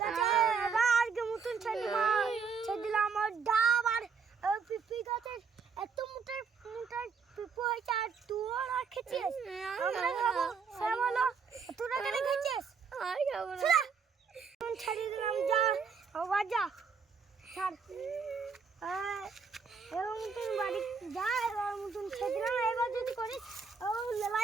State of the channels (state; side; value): quieter; left; 5.6 dB